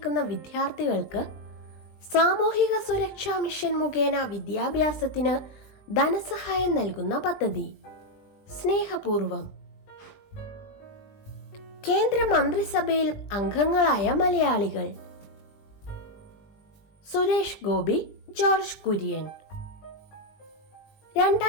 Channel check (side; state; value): right; late; 20 ms